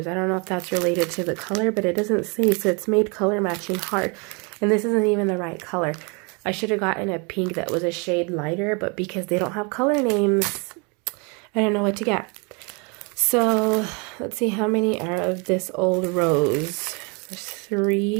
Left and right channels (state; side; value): quieter; left; 32.2 dB